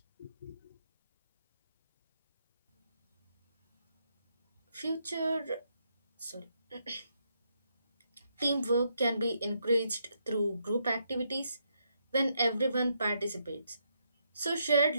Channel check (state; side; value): inverted; both; correlation -0.77